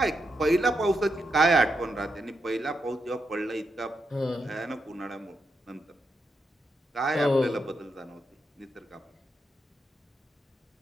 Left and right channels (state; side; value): normal; both; correlation 0.84